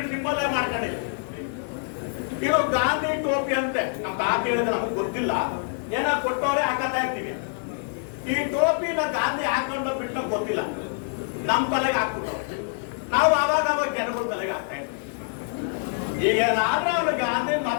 ಸಿಂಬಲ್ ಮಾಡ್ಕೊಂಡಿದ್ದೀವಿ. ಇದು ಗಾಂಧಿ ಟೋಪಿ ಅಂತೆ. ನಮ್ಮ ತಾತ ಹೇಳಿದ್ರೆ ನಮಗೆ ಗೊತ್ತಿಲ್ಲ, ಏನೋ ಕೊಟ್ಟವ್ರೆ ಹಾಕತಾ ಇರ್ತೀವಿ. ಈ ಟೋಪಿನ ಗಾಂಧಿ ಹಾಕೊಂಡು ಬಿಟ್ಟು ಗೊತ್ತಿಲ್ಲ, ನಮ್ಮ ತಲೆಗೆ ಹಾಕ್ಬಿಟ್ಟವ್ರೆ. ನಾವು ಅವಾಗ ಜನಗಳ ತಲೆಗೆ ಹಾಕ್ತಾ ಇದ್ವಿ. ಈಗ ನಾನು ಅವ್ರ ಗಾಂಧಿ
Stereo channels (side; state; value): right; silent; 58 dB below the other